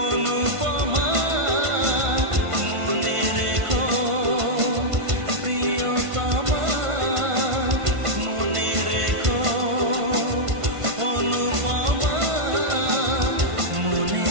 অনুপমা মনে রেখো প্রিয়তমা মনে রেখো অনুপমা মনে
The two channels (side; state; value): left; late; 1.5 ms